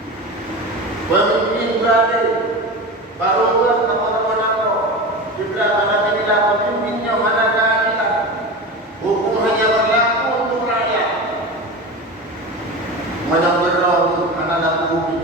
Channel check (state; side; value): normal; both; correlation 0.26